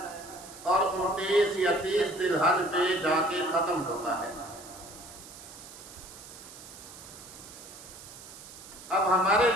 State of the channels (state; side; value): noise; right; hiss, 16 dB below the sound